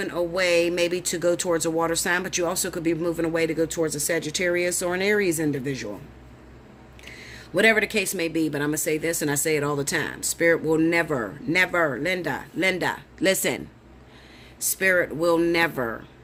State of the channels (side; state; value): both; identical; correlation 1.00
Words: away maybe to go towards a water sign, but you also could be moving away to go towards a Sagittarius or an Aries individual. Whatever the case may be, but I'm going to say this, and I say it all the time. Spirit will never, Linda, listen. Spirit will never